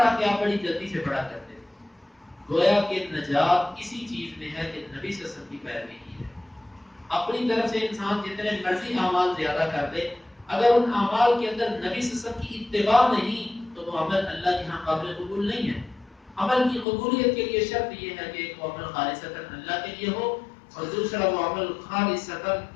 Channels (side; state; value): right; drops out; at 16.9 s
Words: کہ آپ بڑی جلدی سے پڑھا کرتے تھے۔ گویا کہ نجات اسی چیز میں ہے کہ نبی صلی اللہ علیہ وسلم کی پیروی کی ہے۔ اپنی طرف سے انسان جتنے مرضی اعمال زیادہ کر دے، اگر ان اعمال کے اندر نبی صلی اللہ علیہ وسلم کی اتباع نہیں تو وہ عمل اللہ کے ہاں قابل قبول نہیں ہے۔ عمل کی قبولیت کے لیے شرط یہ ہے کہ ایک وہ عمل خالصتاً اللہ کے لیے ہو اور دوسرا وہ عمل خالصتاً